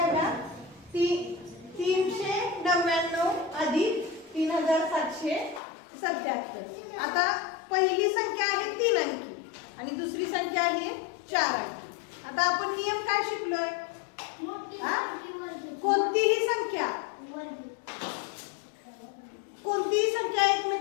बघा. 399 अधिक 3777. आता पहिली संख्या आहे 3 अंकी आणि दुसरी संख्या आहे 4 अंकी. आता आपण नियम काय शिकलोय? कोणतीही संख्या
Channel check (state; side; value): drops out; right; at 5.6 s